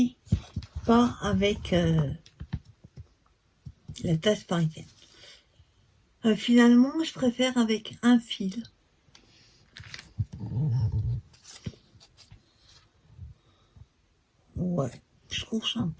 pas avec la tasse parisienne. Finalement, je préfère avec un fil. Ouais, je trouve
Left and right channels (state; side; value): identical; both; correlation 1.00